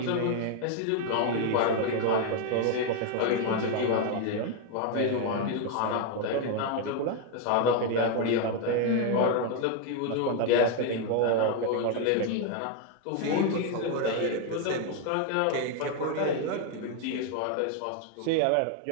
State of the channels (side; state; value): both; different; correlation 0.01